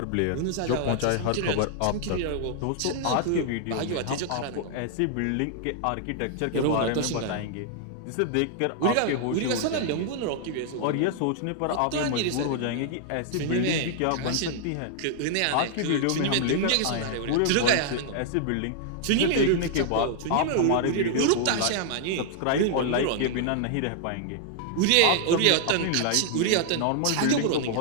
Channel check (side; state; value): both; different; correlation -0.01